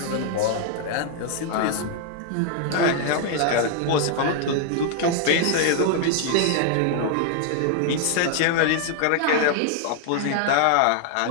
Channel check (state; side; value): different; both; correlation 0.00